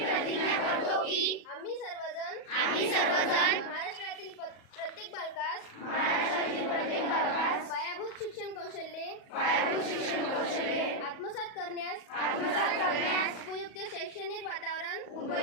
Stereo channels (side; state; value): right; late; 38 ms